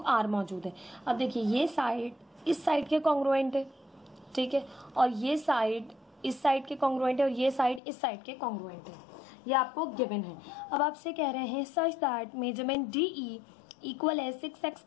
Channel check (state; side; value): drops out; right; at 7.8 s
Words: मौजूद है। अब देखिए ये साइड इस साइड के कॉन्ग्रुएंट है, ठीक है, और ये साइड इस साइड के कॉन्ग्रुएंट है और ये साइड इस साइड के कॉन्ग्रुएंट है, ये आपको गिवन है। अब आपसे कह रहे हैं such that measurement DE equal है 6x